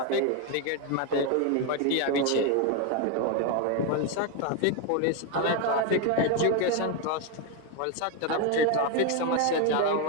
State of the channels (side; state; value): both; different; correlation 0.02